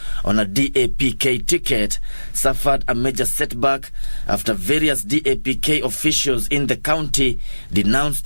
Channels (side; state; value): both; inverted; correlation -1.00